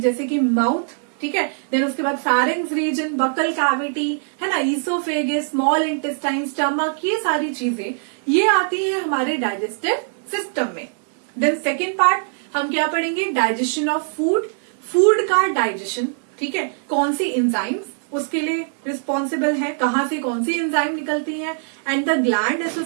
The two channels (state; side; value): silent; left; 64 dB below the other